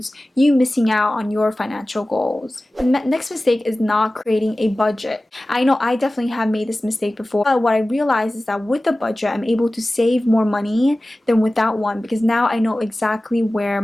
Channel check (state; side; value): normal; both; correlation 0.97